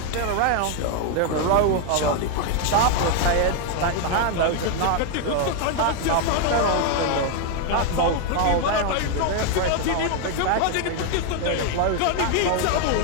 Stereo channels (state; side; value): different; both; correlation 0.01